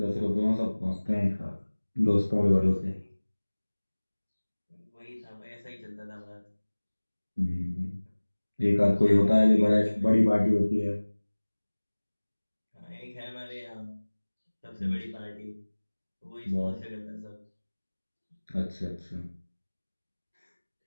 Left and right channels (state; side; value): inverted; both; correlation -1.00